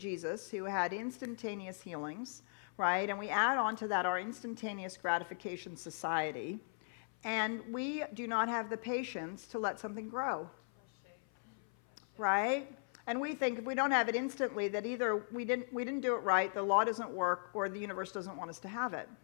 who had instantaneous healings, right? And we add on to that our instantaneous gratification society. And we do not have the patience to let something grow. Right? And we think if we don't have it instantly, that either we didn't do it right, the law doesn't work, or the universe doesn't want us to have it.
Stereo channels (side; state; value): right; silent; 52 dB below the other